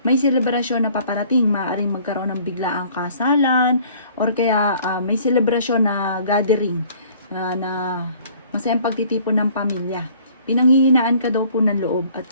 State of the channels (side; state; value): both; inverted; correlation -0.55